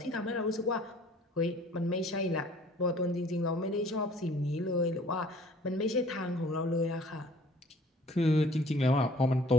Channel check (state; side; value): normal; both; correlation 0.53